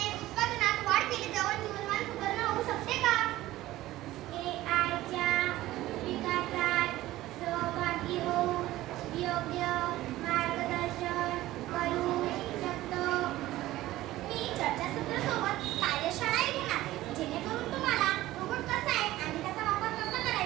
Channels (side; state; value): left; quieter; 16.2 dB